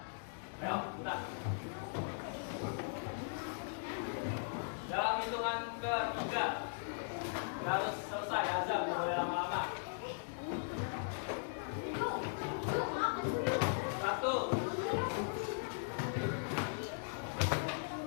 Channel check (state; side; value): silent; right; digital silence